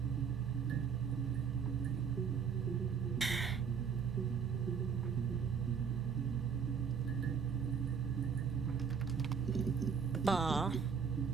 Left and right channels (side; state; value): left; quieter; 6.5 dB